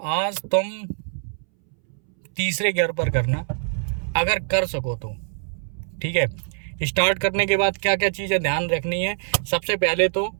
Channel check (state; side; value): silent; left; 63 dB below the other